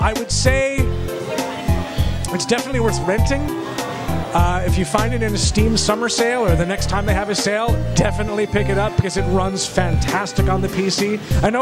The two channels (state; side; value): identical; both; correlation 1.00